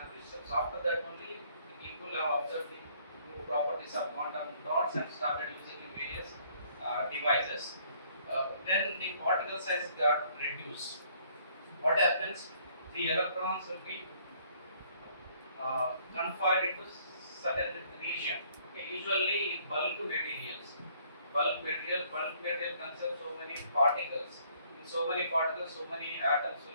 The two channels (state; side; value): inverted; both; correlation -0.63